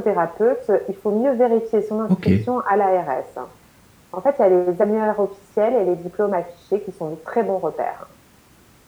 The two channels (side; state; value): both; identical; correlation 1.00